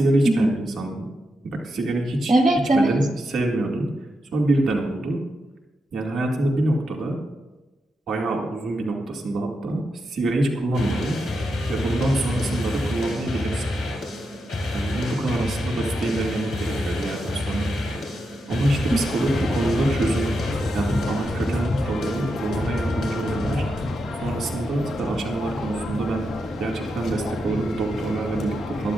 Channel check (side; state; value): both; normal; correlation 0.86